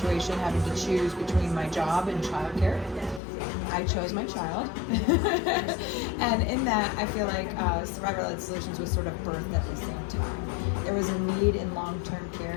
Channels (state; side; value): drops out; right; at 3.2 s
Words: having to choose between my job and childcare. I chose my child. And in that, I feel like Survivor-Led Solutions was sort of birthed at the same time. There was a need in long-term